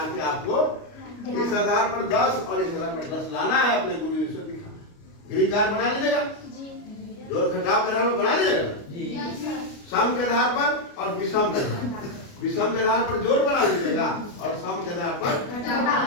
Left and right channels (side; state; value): right; late; 29 ms